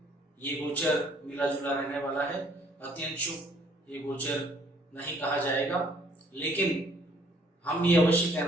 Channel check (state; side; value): normal; both; correlation 0.61